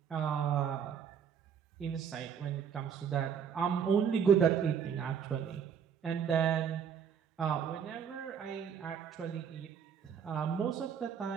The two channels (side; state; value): left; quieter; 7.5 dB